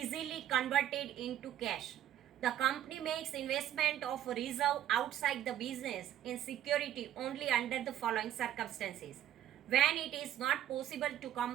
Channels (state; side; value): quieter; left; 11.4 dB